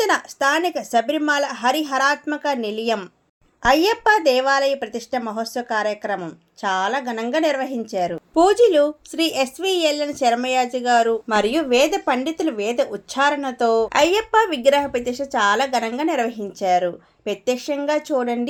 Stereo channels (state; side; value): identical; both; correlation 1.00